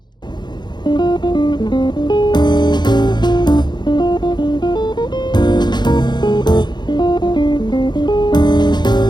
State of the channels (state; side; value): late; right; 0.21 ms